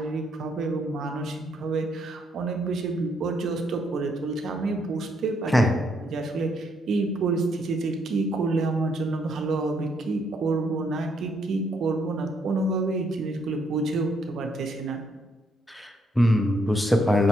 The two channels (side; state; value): both; normal; correlation 0.73